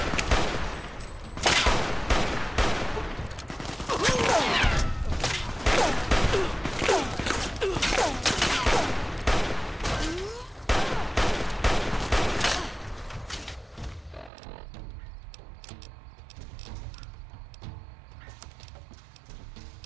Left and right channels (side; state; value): left; drops out; at 14.3 s